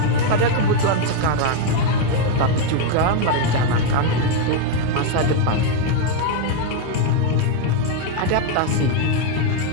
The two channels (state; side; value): different; both; correlation 0.01